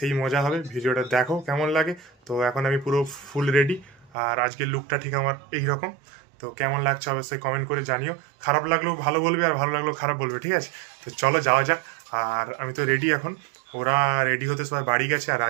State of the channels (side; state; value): left; drops out; at 4.1 s